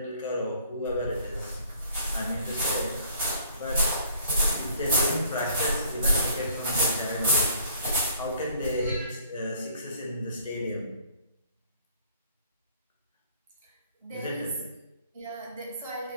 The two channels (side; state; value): both; inverted; correlation -0.57